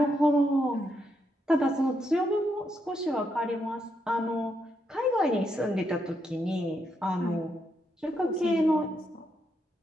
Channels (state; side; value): normal; both; correlation 0.80